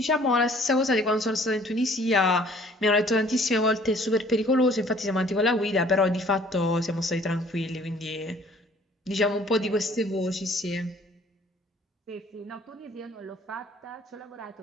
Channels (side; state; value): both; normal; correlation 0.56